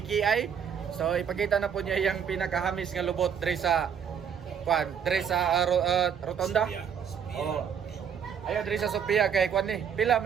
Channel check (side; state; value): left; quieter; 7.7 dB